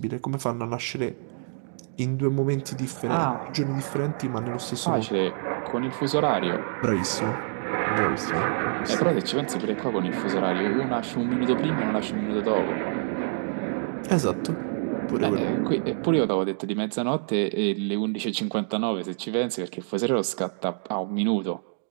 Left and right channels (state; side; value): silent; left; digital silence